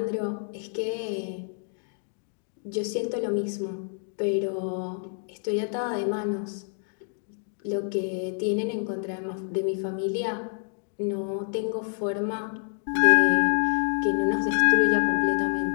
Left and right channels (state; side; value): silent; right; 60 dB below the other